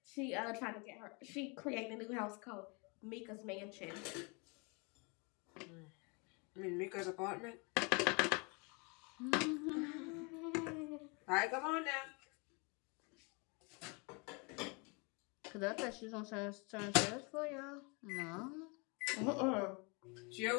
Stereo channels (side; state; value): right; quieter; 31.4 dB